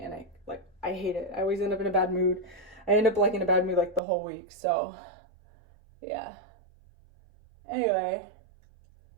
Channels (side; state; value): left; drops out; at 4.0 s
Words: I hate it. I always end up in a bad mood. I end up in a bad mood the whole week. So yeah. Anyway,